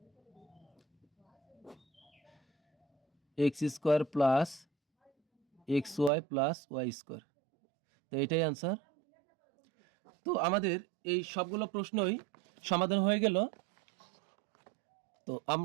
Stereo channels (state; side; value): drops out; left; at 6.1 s